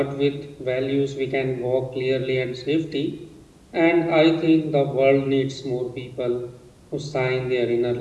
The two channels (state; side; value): identical; both; correlation 1.00